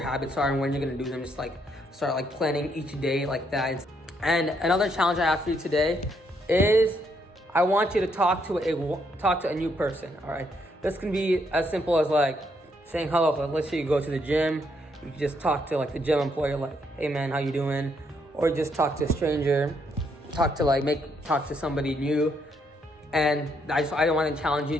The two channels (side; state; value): both; normal; correlation 0.74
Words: are and when you're gonna do them. Just like start like planning each day like that. And another challenge I have for you today is I want you to talk to a new person, all right? This can be as simple as like saying hello. Like, let's say you go to the gym, you can just talk to like the gym employee, like, hey man, how you doing? Or just talk to a stranger, talk to somebody new. And I want to challenge you